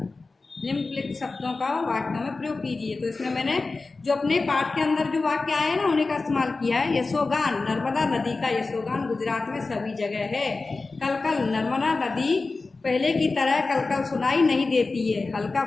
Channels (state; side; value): quieter; right; 3.7 dB